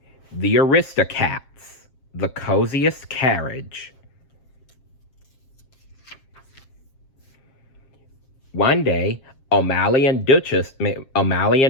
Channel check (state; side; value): late; right; 7.6 ms